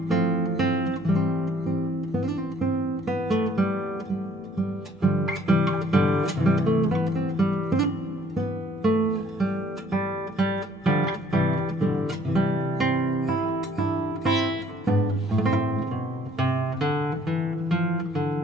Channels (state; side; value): normal; both; correlation 0.61